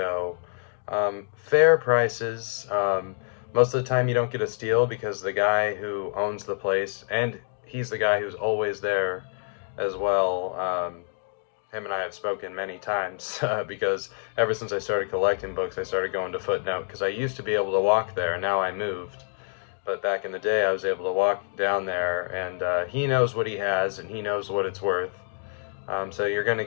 Fair prices. Most of the time you don't get a steal because the guy who owns the place, and he's the guy who's always there as well. Him and I have spoken many times because ever since I started collecting books, I started going to Footnote because I used to be able to walk there. Now I moved. But back in the day, I was able to walk down there, and he knows what he has, and he knows what it's worth. So you're going to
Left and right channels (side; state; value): right; silent; digital silence